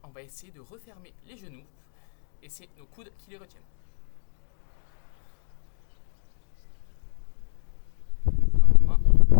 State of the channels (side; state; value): right; silent; 61 dB below the other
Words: on va essayer de refermer les genoux et c'est nos coudes qui les retiennent. Normalement,